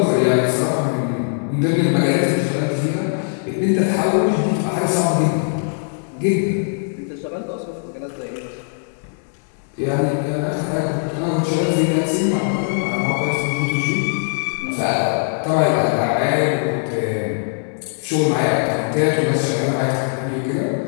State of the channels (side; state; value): right; silent; digital silence